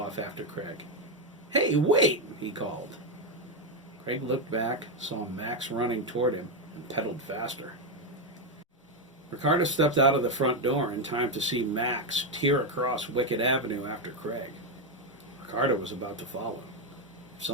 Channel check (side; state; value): both; normal; correlation 0.06